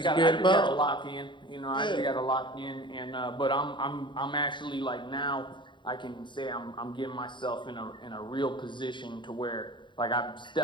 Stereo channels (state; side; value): late; right; 0.23 ms